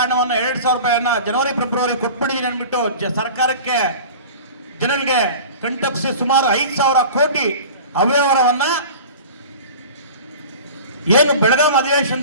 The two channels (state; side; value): inverted; both; correlation -0.38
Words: ಹಣವನ್ನು 2,000 ರೂಪಾಯಿಯನ್ನ ಜನವರಿ ಫೆಬ್ರವರಿ ಕೊಟ್ಬಿಟ್ಟಿದ್ದೀನಿ ಅಂದ್ಬಿಟ್ಟು ಸರ್ಕಾರಕ್ಕೆ ಜನರಿಗೆ ಕಂಟಪ್ಸಿ ಸುಮಾರು 5,000 ಕೋಟಿ ಅವ್ಯವಹಾರವನ್ನ ಏನು ಬೆಳಗಾಂ